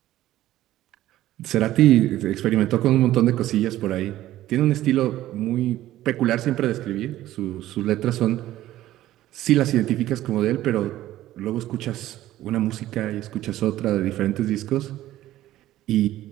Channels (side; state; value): left; quieter; 14.3 dB